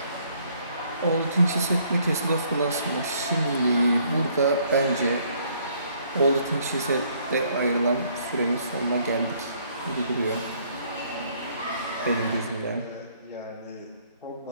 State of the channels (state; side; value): inverted; both; correlation -0.65